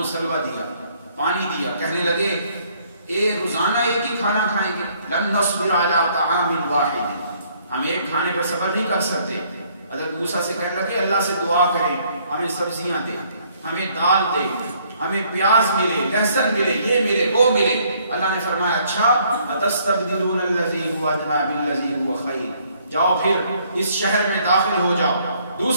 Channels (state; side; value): inverted; both; correlation -0.65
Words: سلوہ دیا، پانی دیا، کہنے لگے روزانہ ایک ہی کھانا کھائیں گے، لن نصبر علی طعام واحد، ہم ایک کھانے پر صبر نہیں کر سکتے۔ حضرت موسیٰ سے کہنے لگے اللہ سے دعا کریں ہمیں سبزیاں دے، ہمیں دال دے، ہمیں پیاز ملے، لہسن ملے، یہ ملے، وہ ملے۔ اللہ نے فرمایا اچھا اتستبدلون الذی هو ادنی بالذی هو خیر، جاؤ پھر اس شہر میں داخل ہو جاؤ۔